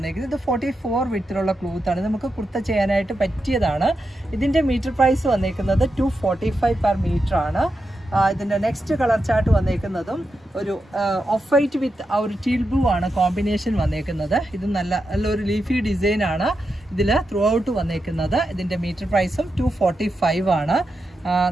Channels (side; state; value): both; normal; correlation 0.87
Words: ഇത് 44 വിത്തിലുള്ള ക്ലോത്താണ്. നമുക്ക് കുർത്ത ചെയ്യാനായിട്ട് പറ്റിയതാണ്. ഇതിൻ്റെ മീറ്റർ പ്രൈസ് വന്നേക്കുന്നത് 245 പെർ മീറ്റർ ആണ്. ഇതിൻ്റെ നെക്സ്റ്റ് കളർ ചാർട്ട് വന്നേക്കുന്നതും ഒരു ഓഫ് വൈറ്റ് വിത്ത് ആ ഒരു ടീൽ ബ്ലൂ ആണ് കോമ്പിനേഷൻ വന്നേക്കുന്നത്. ഇത് നല്ലൊരു ലീഫി ഡിസൈനാണ് ഇതിൽ ത്രൂ ഔട്ട് വന്നേക്കുന്നത്. ഇതിൻ്റെ മീറ്റർ പ്രൈസും 245 ആണ്.